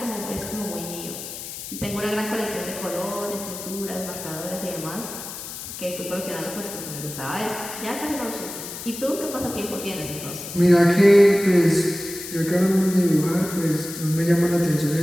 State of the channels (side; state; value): left; noise; hiss, 10 dB below the sound